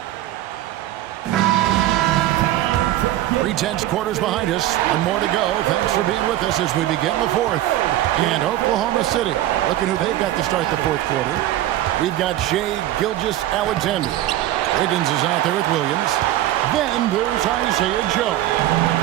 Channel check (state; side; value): quieter; left; 14.1 dB